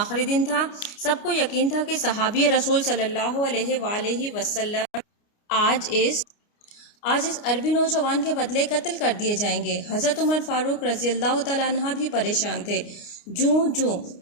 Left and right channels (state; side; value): late; right; 29 ms